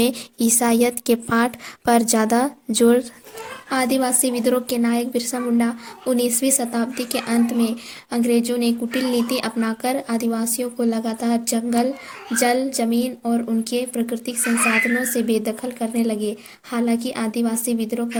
ईसाईयत के पाठ पर ज़्यादा जोर। आदिवासी विद्रोह के नायक बिरसा मुंडा। 19वीं शताब्दी के अंत में अंग्रेजों ने कुटिल नीति अपनाकर आदिवासियों को लगातार जंगल, जल, जमीन और उनके प्राकृतिक संसाधनों से बेदखल करने लगे। हालांकि आदिवासी विद्रोह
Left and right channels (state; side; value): identical; both; correlation 1.00